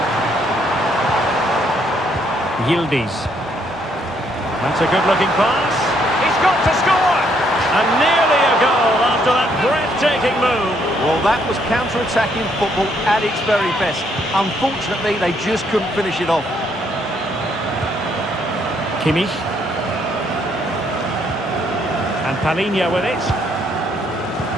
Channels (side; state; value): both; normal; correlation 0.70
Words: Yildiz. That's a good-looking pass. He's got to score! And nearly a goal after that breathtaking move. Well, that was counter-attacking football at its very best. Unfortunately, they just couldn't finish it off. Kimmich. And Palinha with it.